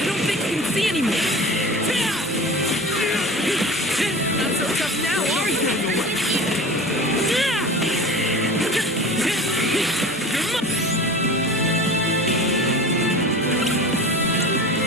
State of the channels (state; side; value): normal; both; correlation 0.36